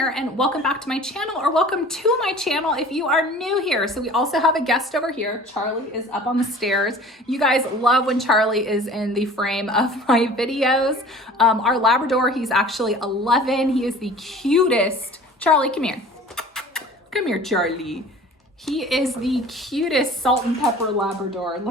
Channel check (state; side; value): normal; both; correlation 0.45